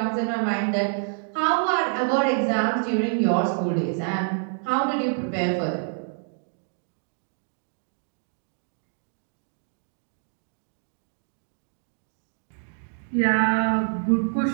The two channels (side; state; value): left; silent; digital silence